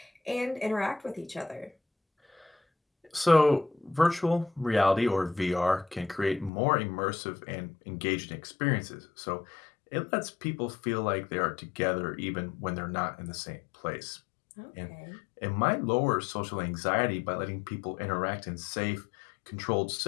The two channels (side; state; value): right; drops out; at 6.5 s